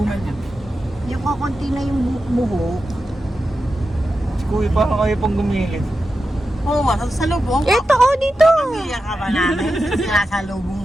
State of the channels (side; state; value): both; normal; correlation 0.90